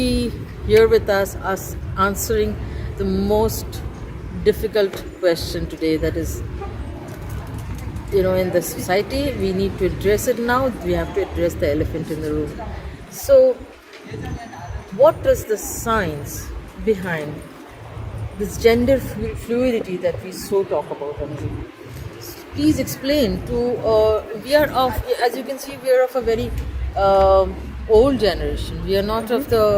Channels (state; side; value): identical; both; correlation 1.00